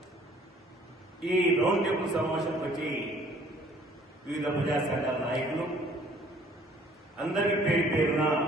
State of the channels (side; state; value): both; normal; correlation 0.57